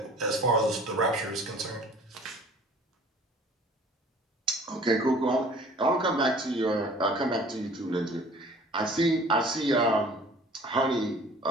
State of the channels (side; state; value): both; normal; correlation 0.49